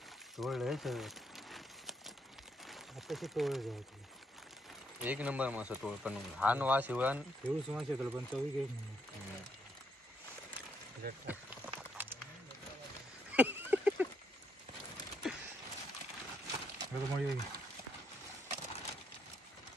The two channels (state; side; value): normal; both; correlation 0.74